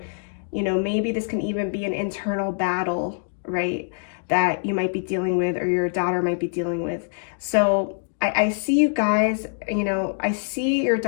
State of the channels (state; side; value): silent; right; digital silence